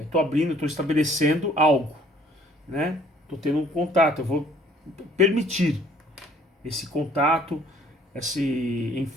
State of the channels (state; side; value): normal; both; correlation 0.57